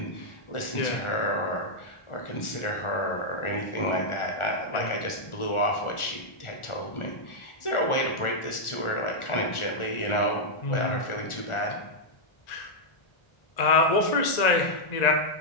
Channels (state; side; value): late; right; 1.4 ms